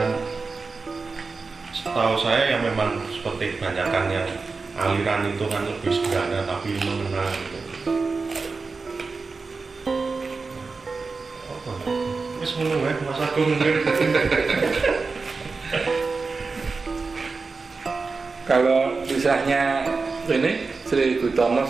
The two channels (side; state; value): left; quieter; 4.3 dB